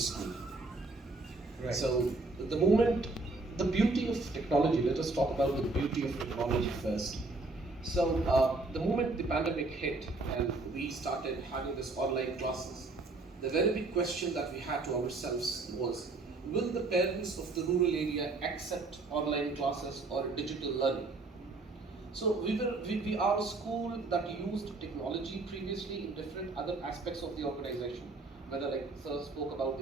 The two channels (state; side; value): quieter; left; 3.4 dB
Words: Right. So, the beauty of technology, let us talk about the beauty of technology first. So, the moment the pandemic hit and we started having this online classes, the very big question that we had to ourselves was, will the parents of the rural area accept online classes or digital learning? So we are a school that used technology previously in different other aspects of the organization. Whether, like Sir spoke about